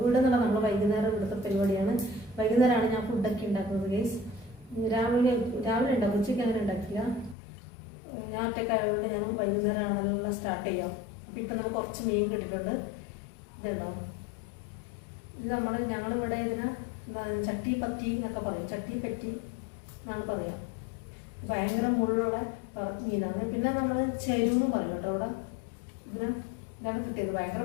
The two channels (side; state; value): right; drops out; at 7.4 s